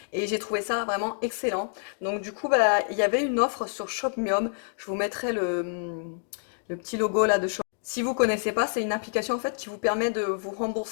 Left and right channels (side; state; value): right; silent; digital silence